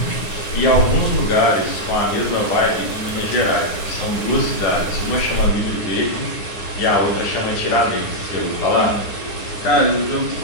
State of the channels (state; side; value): late; right; 9.8 ms